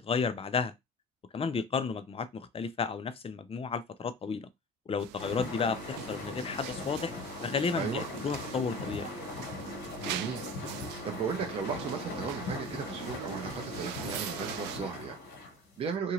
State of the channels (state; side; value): normal; both; correlation 0.37